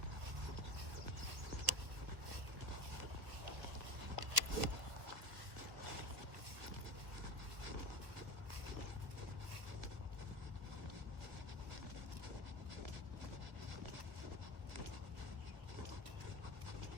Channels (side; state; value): left; late; 1.4 ms